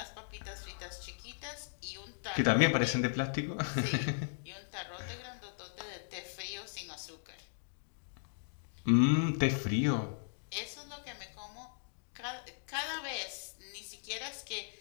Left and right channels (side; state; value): right; silent; digital silence